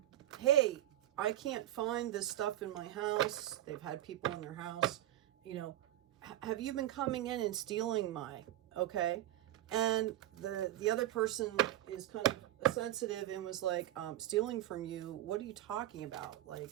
hey, I can't find this stuff in my house. They've had people in their house, you know, have you been coming in and stealing my, okay? And the other person is kind of sensitive and was like, stealing from you? What are you talking about? Like,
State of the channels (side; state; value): left; quieter; 13.8 dB